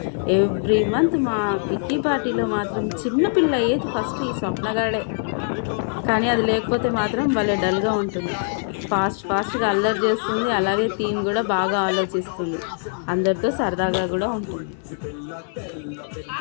ఎవ్రీ మంత్ మా కిట్టి పార్టీలో మాత్రం చిన్న పిల్ల అయ్యేది ఫస్ట్ ఈ స్వప్నగాడే. కానీ అది లేకపోతే మాత్రం భలే డల్గా ఉంటుంది. ఫాస్ట్గా అల్లరి చేస్తుంది, అలాగే థీమ్ కూడా బాగా ఆలోచిస్తుంది, అందరితో సరదాగా కూడా ఉంటుంది.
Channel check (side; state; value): right; silent; 64 dB below the other